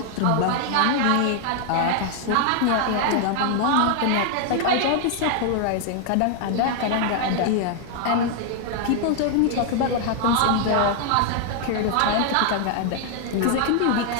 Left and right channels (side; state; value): both; different; correlation 0.00